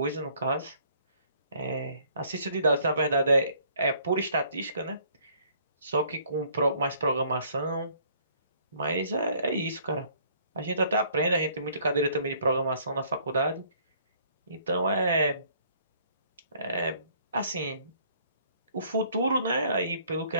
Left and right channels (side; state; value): both; inverted; correlation -0.61